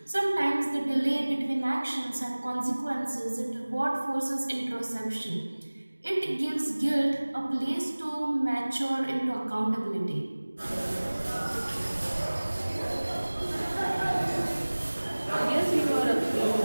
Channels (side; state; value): both; inverted; correlation -1.00